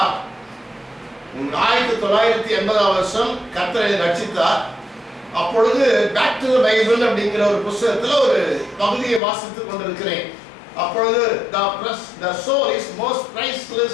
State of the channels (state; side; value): drops out; right; at 9.2 s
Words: 1980ஆம் வருஷம் கர்த்தரை ரட்சித்தார். அப்பொழுது பேக் டு தி பைபிள் அப்படிங்கிற ஒரு புத்தகத்துல ஒரு பகுதியை வாசித்துக் கொண்டிருக்கிறேன். அப்பொழுது the soul is most priceless